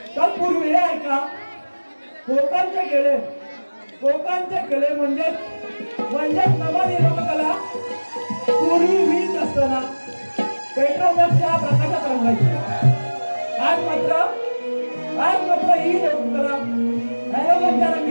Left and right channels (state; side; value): inverted; both; correlation -1.00